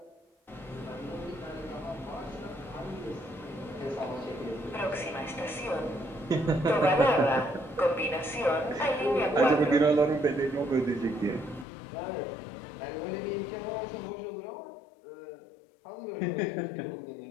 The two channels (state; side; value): drops out; right; at 11.7 s